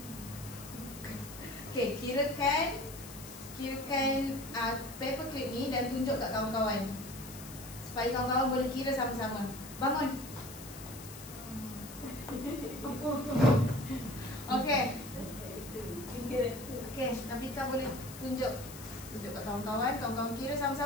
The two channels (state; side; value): noise; left; hiss, 14 dB below the sound